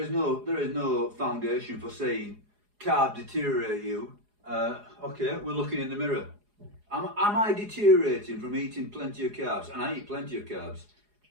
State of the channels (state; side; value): late; left; 4.8 ms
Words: no foundation for saying carbs deteriorate you. Okay, we're looking in the mirror. Am I deteriorating from eating plenty of carbs? And I eat plenty of carbs.